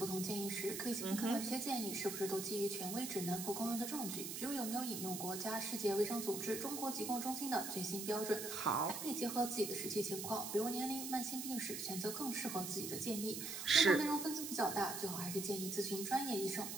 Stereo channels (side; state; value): right; noise; hiss, 6 dB below the sound